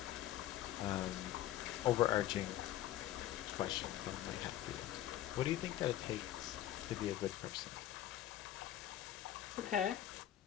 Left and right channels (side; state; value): right; quieter; 13.1 dB